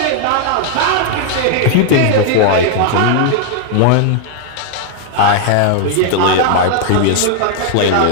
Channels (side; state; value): both; different; correlation 0.00